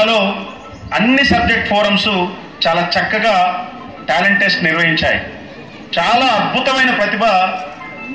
అన్ని సబ్జెక్ట్ ఫోరమ్స్ చాలా చక్కగా టాలెంట్ టెస్ట్ నిర్వహించాయి. చాలా అద్భుతమైన ప్రతిభ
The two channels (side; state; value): both; identical; correlation 1.00